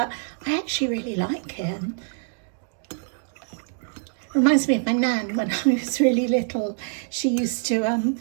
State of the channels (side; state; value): left; silent; digital silence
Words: I actually really like it. Reminds me of my nan when I was really little. She used to